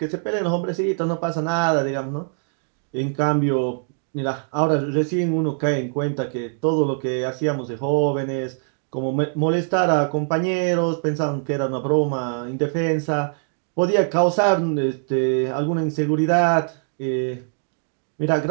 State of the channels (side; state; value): left; silent; digital silence